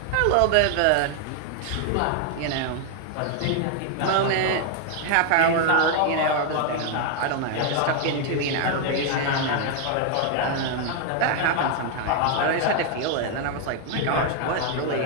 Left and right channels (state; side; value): different; both; correlation 0.00